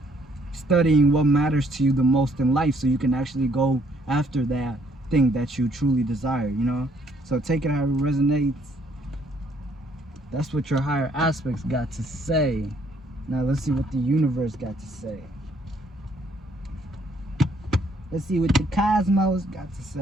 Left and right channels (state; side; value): normal; both; correlation 0.66